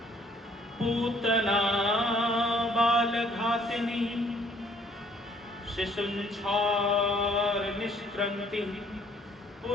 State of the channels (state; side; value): normal; both; correlation 0.62